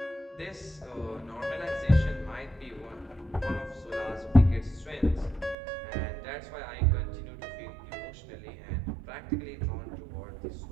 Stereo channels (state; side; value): drops out; left; at 5.6 s